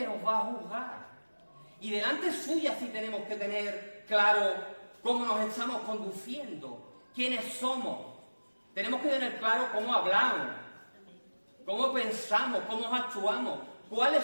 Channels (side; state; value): both; inverted; correlation -1.00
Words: nos va a juzgar. Y delante suya sí tenemos que tener claro cómo nos estamos conduciendo, quiénes somos. Tenemos que tener claro cómo hablamos, cómo pensamos, cómo actuamos,